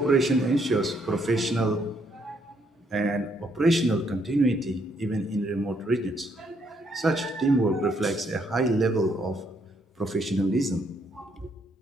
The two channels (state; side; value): normal; both; correlation 0.72